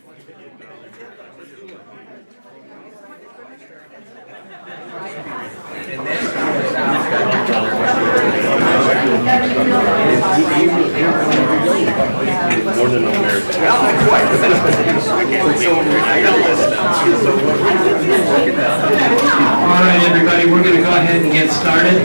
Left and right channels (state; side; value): inverted; both; correlation -1.00